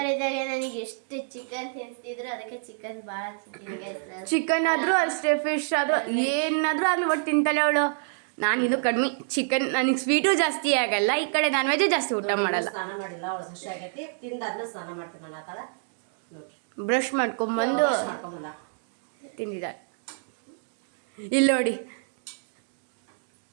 ನನಗೆ ಎಷ್ಟು ಚಿಕನ್ ತಿನ್ನಿಸ್ತಿದ್ರು, ಅದಕ್ಕೆ ಚಿಕನ್ ಭಾಳ ತಿಂತೀನಿ. ಚಿಕನ್ ಆದ್ರೂ ಅಷ್ಟೇ, ಫಿಶ್ ಆದ್ರೂ ಏನಾದ್ರೂ ಆಗ್ಲಿ ಒಟ್ಟು ತಿಂತಾಳೆ ಅವಳು. ನಾನು ಇದು ಕಡಿಮೆ ಚಿಕನ್, ನನಗೆ ಸ್ವೀಟು ಜಾಸ್ತಿ ಆಗಲ್ಲ, ಈ ಕಡೆ ನಾನ್ ವೆಜ್ ಜಾಸ್ತಿ ಊಟ ಮಾಡಲ್ಲ. ಸ್ನಾನ ಮಾಡಿಲ್ಲ ಅವಳು, ಹಸಿ ಆಗೈತಿ, ತಿಂದಾದ್ಮೇಲೆ ಸ್ನಾನ ಮಾಡ್ತೀನಿ ನಾನು. ಆತಾಳ ನೋಡ್ರಿ, ಬ್ರಷ್ ಮಾಡ್ಕೊಂಬಂದು ತಿಂದಿದ್ದಾಳೆ. ಇಲ್ಲಿ ನೋಡಿ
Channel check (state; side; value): silent; left; digital silence